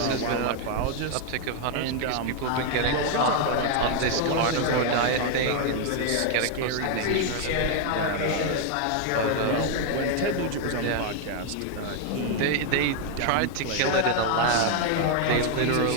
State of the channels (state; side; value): different; both; correlation 0.00